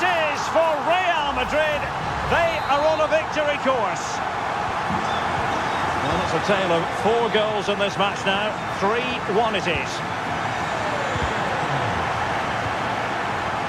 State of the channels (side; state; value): both; identical; correlation 1.00